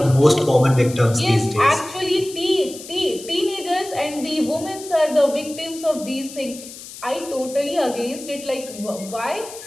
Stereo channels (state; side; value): noise; left; hiss, 15 dB below the sound